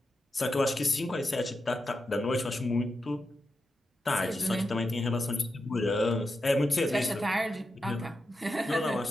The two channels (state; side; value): normal; both; correlation 0.88